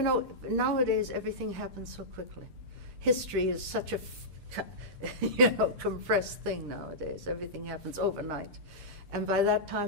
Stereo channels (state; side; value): late; left; 6.8 ms